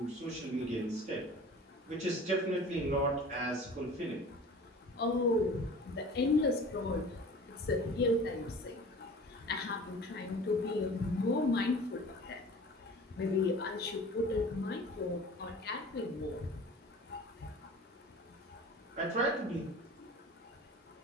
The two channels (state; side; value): normal; both; correlation 0.42